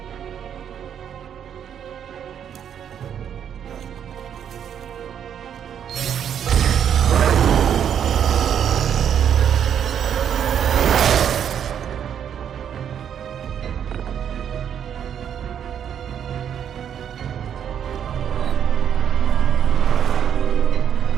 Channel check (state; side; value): quieter; left; 8.8 dB